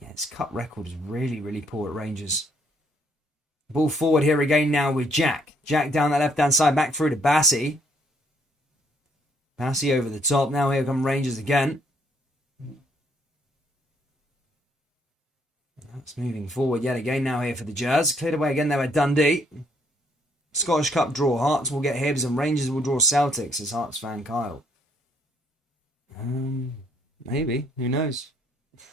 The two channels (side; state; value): both; normal; correlation 0.68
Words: yeah, his cup record is really, really poor at Rangers. Ball forward here again now with Jack. Jack down that left-hand side, back through to Bassi. Bassi over the top. Now here come Rangers again. That's moving forward yet again now here for the Jazz. Cleared away again there by Dundee. Scottish Cup draw. Hearts will get Hibs and Rangers will draw Celtics, as Hearts fan Kyle. Maybe. Who knows?